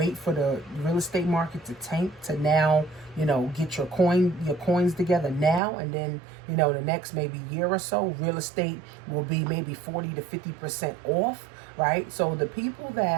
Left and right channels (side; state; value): left; drops out; at 5.6 s